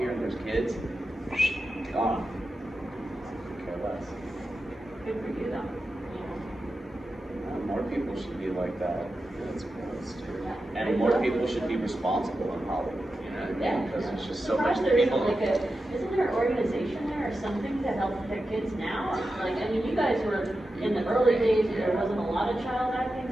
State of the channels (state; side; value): normal; both; correlation 0.91